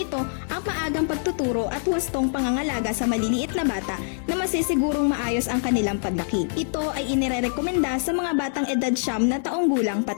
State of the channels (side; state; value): right; silent; digital silence